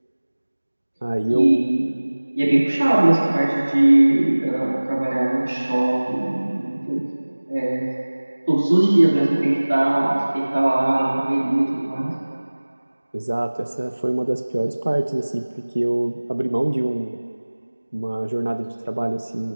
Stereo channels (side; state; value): both; inverted; correlation -1.00